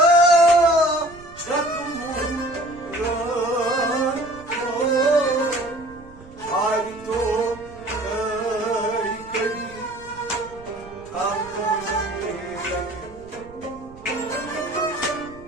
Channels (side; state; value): right; noise; rumble, 20 dB below the sound